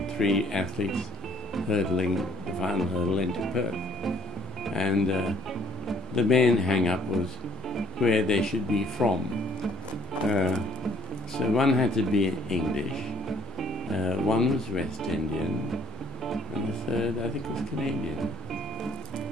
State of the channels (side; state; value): both; normal; correlation 0.60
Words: 3 athletes hurdling the final hurdle into Perth. And the main hang-up was where they should be from. So one had to be English, one was West Indian, and the third, I think, was Canadian.